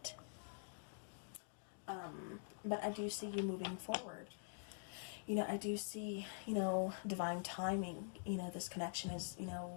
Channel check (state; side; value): silent; right; digital silence